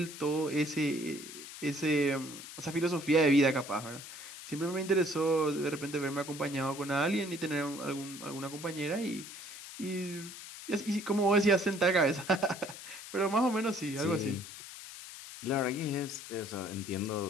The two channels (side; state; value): left; noise; hiss, 12 dB below the sound